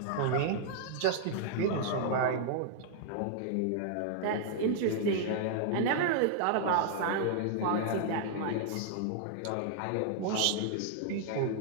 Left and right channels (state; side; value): different; both; correlation -0.01